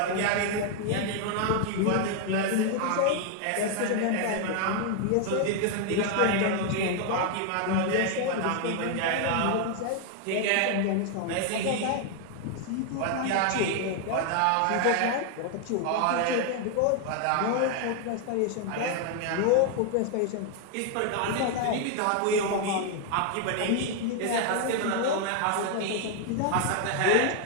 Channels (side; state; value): both; different; correlation 0.00